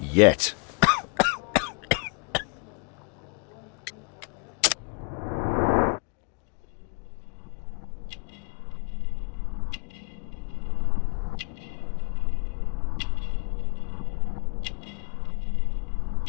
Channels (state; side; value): quieter; right; 37.4 dB